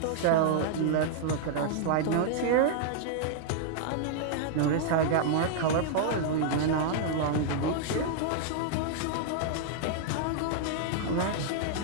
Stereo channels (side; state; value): both; different; correlation -0.01